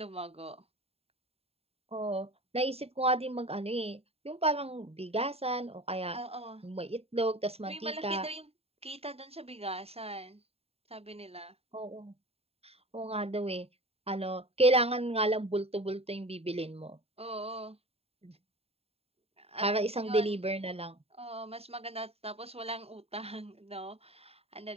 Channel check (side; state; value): left; late; 0.29 ms